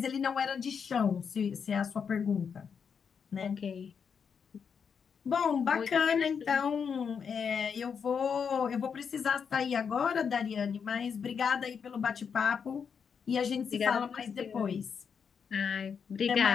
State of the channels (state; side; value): quieter; right; 6.6 dB